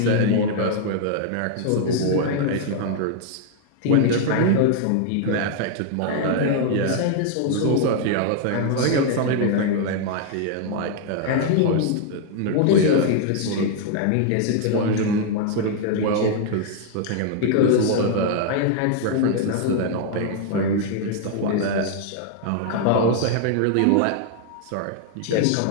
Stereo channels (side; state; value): both; different; correlation 0.00